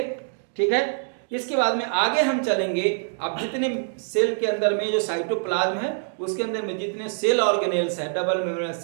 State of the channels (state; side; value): silent; left; 62 dB below the other